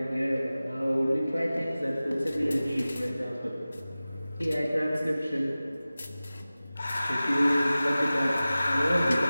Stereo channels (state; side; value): inverted; both; correlation -0.97